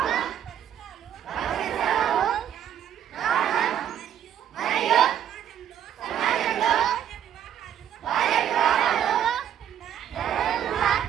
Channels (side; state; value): left; quieter; 9.9 dB